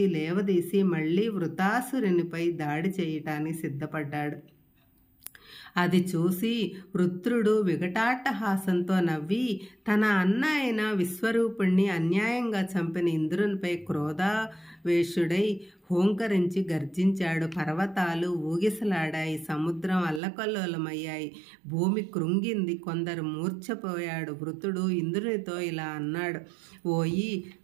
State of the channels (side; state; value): left; drops out; at 20.2 s